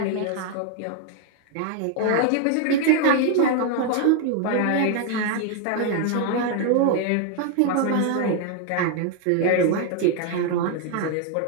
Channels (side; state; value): both; different; correlation 0.00